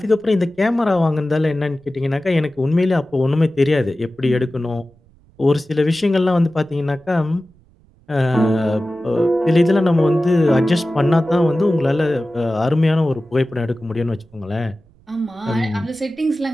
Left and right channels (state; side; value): noise; right; rumble, 30 dB below the sound